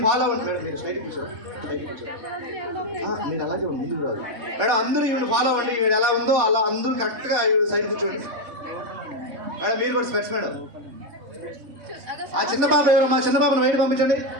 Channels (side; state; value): left; late; 3.6 ms